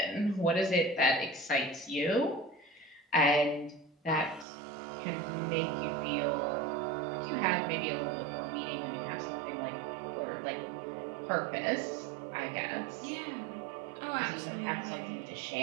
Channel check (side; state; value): left; drops out; at 4.5 s